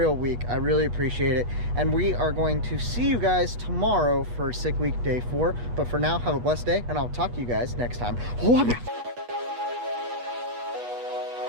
week. I really appreciate it. And we are going to see you guys tomorrow for Sick Week Day 4. But for now, have a blessed day, and I'll talk to you guys next time.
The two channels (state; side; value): late; left; 8.3 ms